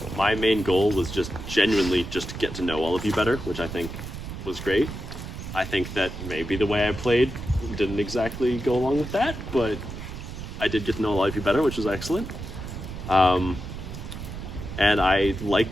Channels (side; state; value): right; noise; rumble, 9 dB below the sound